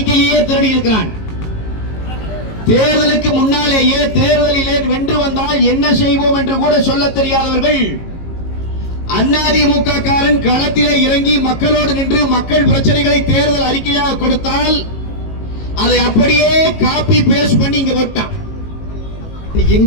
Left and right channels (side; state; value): right; late; 18 ms